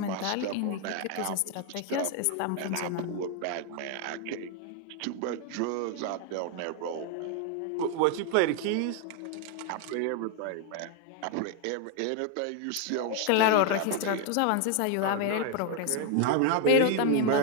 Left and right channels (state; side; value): different; both; correlation 0.01